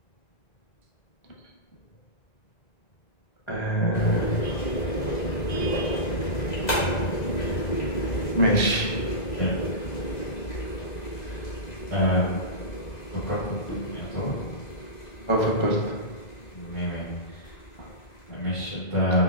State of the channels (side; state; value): right; late; 1.9 ms